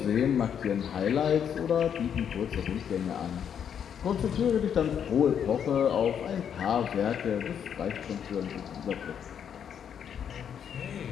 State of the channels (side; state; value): right; quieter; 8.3 dB